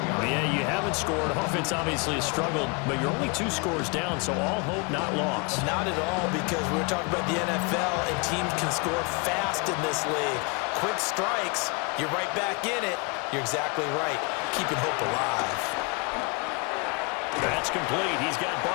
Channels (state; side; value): quieter; right; 30.9 dB